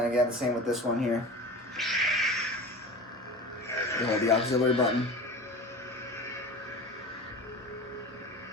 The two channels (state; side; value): normal; both; correlation 0.34